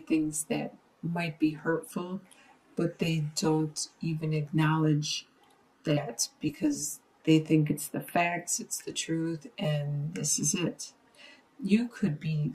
that might be hurtful, but they don't even acknowledge that because they think it's the facts, it's the truth, and this is it. You could be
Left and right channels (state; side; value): identical; both; correlation 1.00